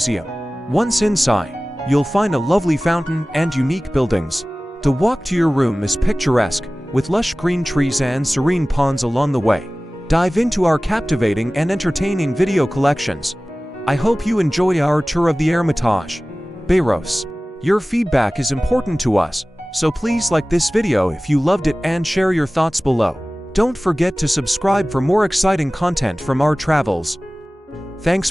Once inside, you'll find a lovely fountain and unique buildings. The walk to your room is picturesque, with lush green trees and serene ponds along the way. Dive into our captivating and entertaining video collections. I hope you enjoy our tour of the Hermitage Bayreuth. Your feedback is important to us, so please like this video if you loved it and share your thoughts below. Don't forget to subscribe for more exciting content from our travels. Thanks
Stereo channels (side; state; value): both; normal; correlation 0.98